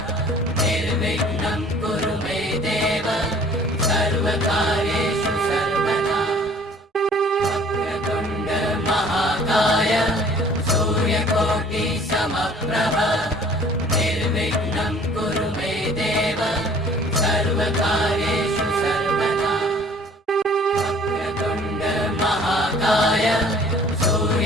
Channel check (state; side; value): normal; both; correlation 0.53